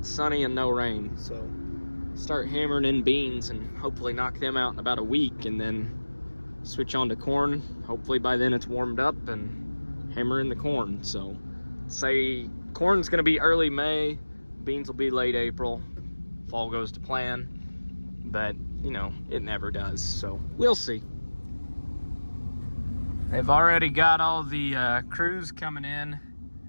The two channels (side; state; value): both; inverted; correlation -1.00